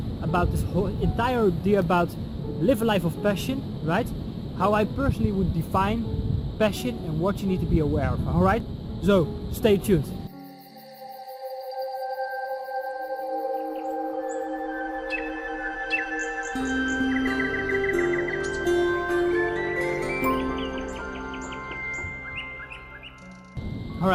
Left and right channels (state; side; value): identical; both; correlation 1.00